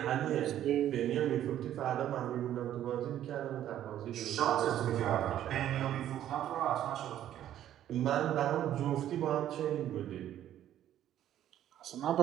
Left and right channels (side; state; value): left; quieter; 11.6 dB